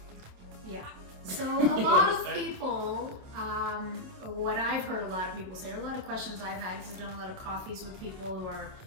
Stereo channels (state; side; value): late; left; 27 ms